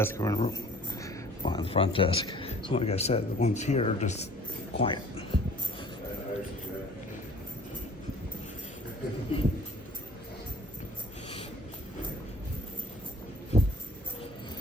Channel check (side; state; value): both; normal; correlation 0.52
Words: or in the room behind the front desk. So like I said, the ones here are just quiet.